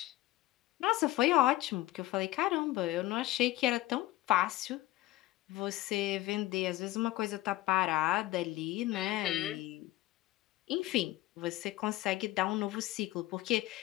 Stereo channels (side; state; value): right; quieter; 17.3 dB